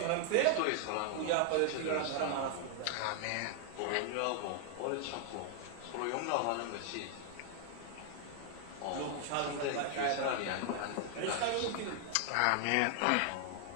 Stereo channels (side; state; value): both; different; correlation 0.00